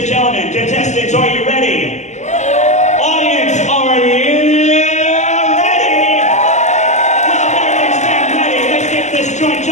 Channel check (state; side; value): late; right; 0.34 ms